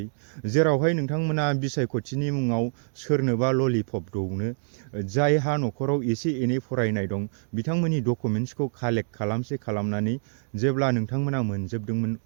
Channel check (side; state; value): left; silent; 61 dB below the other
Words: जेरावहाय नोंथांमोना बिसायख'थिनि मुङाव सोरनोबा ललिपप दौनो जायहा न'खराव एसे एनै फरायनाय दं बिथांमोननि डकुमेन्ट्सखौ कालेक्ट खालामनानै जेब्ला नोंथांमोना मोनजोबदोंमोन